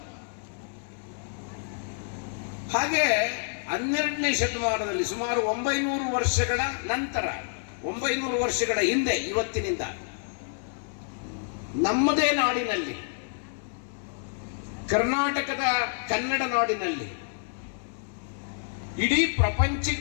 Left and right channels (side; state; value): right; silent; 59 dB below the other